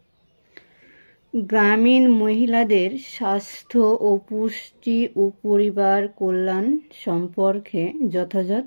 গ্রামীণ মহিলাদের স্বাস্থ্য ও পুষ্টি ও পরিবার কল্যাণ সম্পর্কে যথাযথ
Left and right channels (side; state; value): both; inverted; correlation -1.00